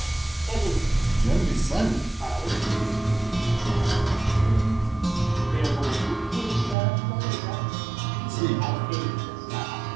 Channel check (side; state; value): left; drops out; at 6.8 s